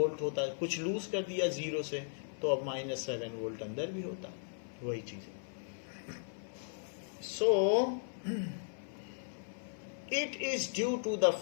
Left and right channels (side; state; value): right; silent; 53 dB below the other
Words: होता है, कुछ लूज कर दिया 0 से, तो अब -7 वोल्ट अंदर भी होता है, वही चीज है। So it is due to the